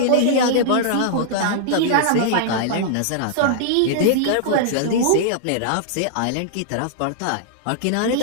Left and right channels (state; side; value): different; both; correlation -0.01